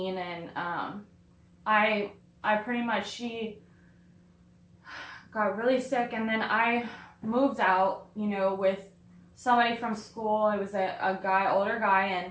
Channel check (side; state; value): both; identical; correlation 1.00